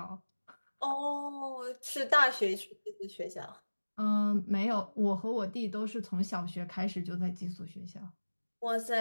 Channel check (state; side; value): inverted; both; correlation -1.00